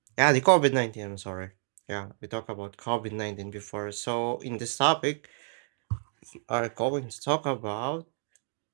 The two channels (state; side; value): silent; left; 58 dB below the other